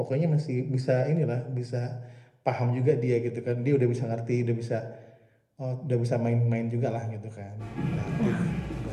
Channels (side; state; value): both; identical; correlation 1.00